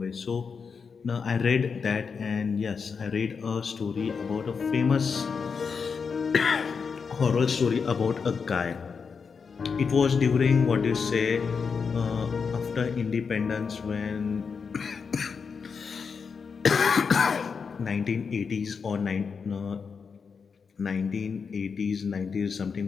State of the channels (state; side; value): quieter; right; 5.7 dB